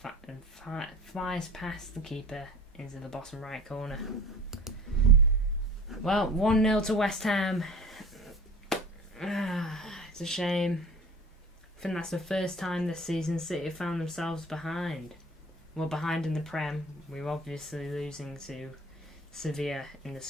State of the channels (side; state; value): both; normal; correlation 0.41